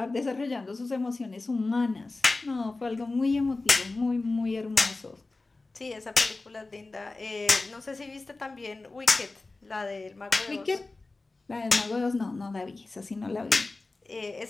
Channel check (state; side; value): quieter; right; 3.4 dB